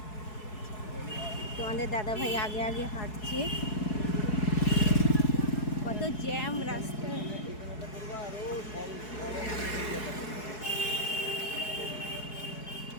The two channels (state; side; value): late; right; 4.7 ms